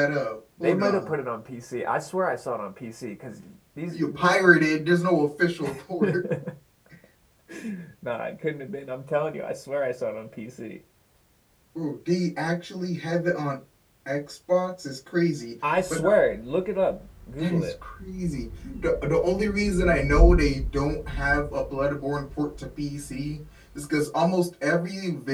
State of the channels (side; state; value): both; identical; correlation 1.00